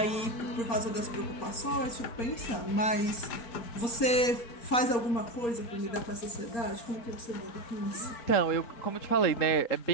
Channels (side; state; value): right; late; 4.3 ms